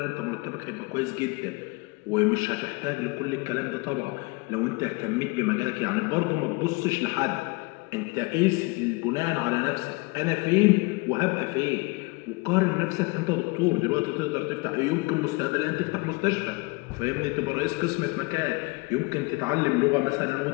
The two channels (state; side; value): quieter; right; 26.1 dB